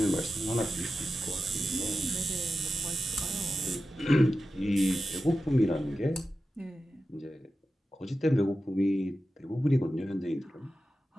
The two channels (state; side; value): normal; both; correlation 0.92